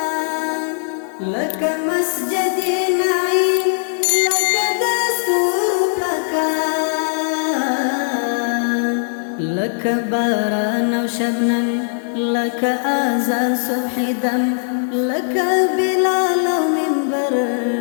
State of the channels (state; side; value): silent; right; digital silence